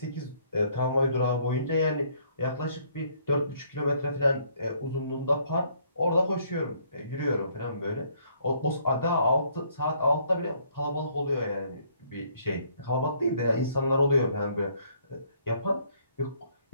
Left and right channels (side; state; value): both; inverted; correlation -0.65